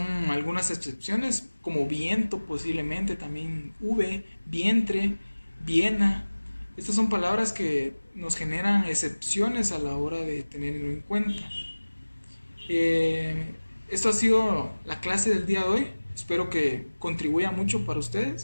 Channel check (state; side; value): inverted; both; correlation -1.00